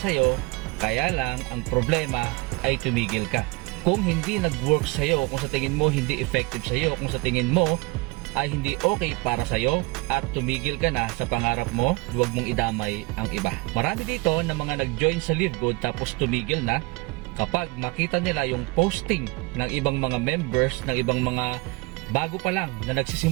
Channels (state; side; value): quieter; left; 24.4 dB